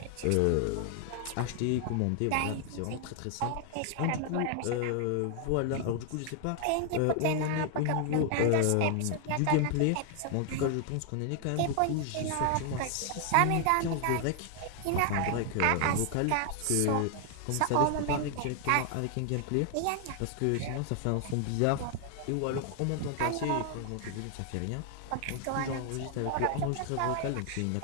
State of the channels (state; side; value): different; both; correlation 0.00